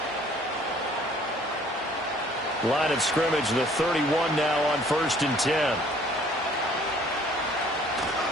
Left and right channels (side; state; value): both; normal; correlation 0.57